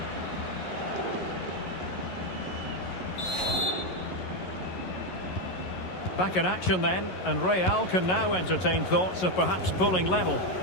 Back in action then, and Real can now entertain thoughts of perhaps pulling level.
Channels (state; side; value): late; right; 11 ms